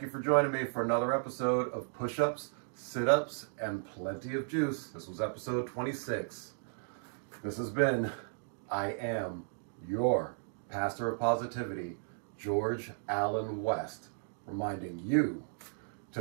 you for joining me for another episode of Push-Ups, Sit-Ups, and Plenty of Juice. This was episode 26. This has been, I am your Pastor of Positivity, George Allen West, reminding you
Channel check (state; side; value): silent; left; digital silence